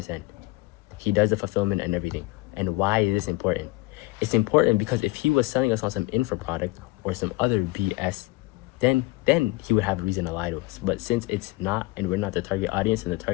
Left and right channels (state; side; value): quieter; right; 21.4 dB